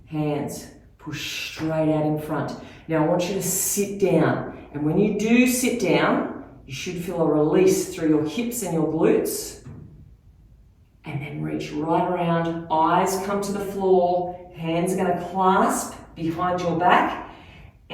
hands push straight out in front. Now I want you to sit down, and when you do sit down, you should feel a release through your hips and your glutes, and then reach right around, eyes come to the floor, hands are going to clasp behind your back,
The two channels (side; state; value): both; identical; correlation 1.00